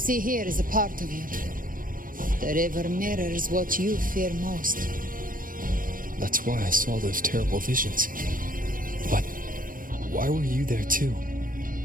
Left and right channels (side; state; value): left; late; 0.40 ms